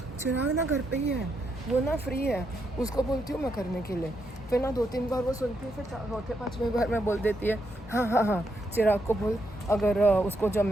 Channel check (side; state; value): both; normal; correlation 0.80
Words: चिराग ना घर पे ही है, वो ना फ्री है, उसको बोलती हूँ मैं करने के लिए। फिर ना 2-3 बार वो सुनती है, फिर 4-5वें बार मैं बोल देती है हाँ चिराग को बोल, अगर उसको